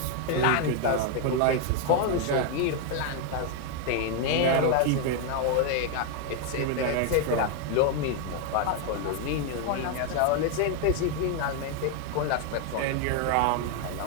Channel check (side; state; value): both; different; correlation 0.01